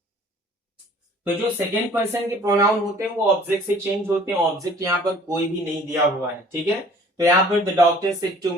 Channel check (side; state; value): both; normal; correlation 0.52